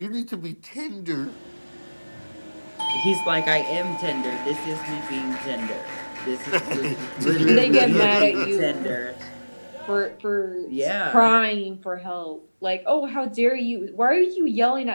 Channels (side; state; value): both; inverted; correlation -1.00